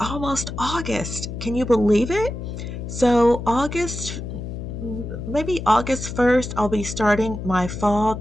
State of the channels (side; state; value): left; noise; hum, 7 dB below the sound